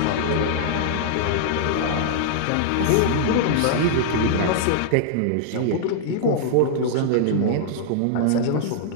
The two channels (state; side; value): different; both; correlation -0.01